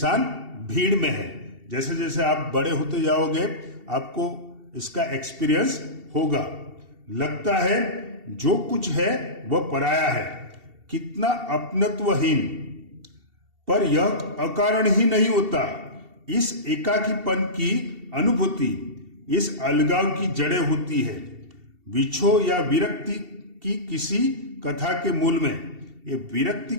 भीड़ में है। जैसे जैसे आप बड़े होते जाओगे आपको इसका एक्सपीरियंस होगा। लगता है जो कुछ है वह पराया है, कितना अपनत्वहीन। पर यह अकारण ही नहीं होता। इस एकाकीपन की अनुभूति, इस अलगाव की जड़ें होती है विछोह या विरक्ति की किसी कथा के मूल में। ये विरक्ति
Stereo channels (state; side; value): late; left; 2.7 ms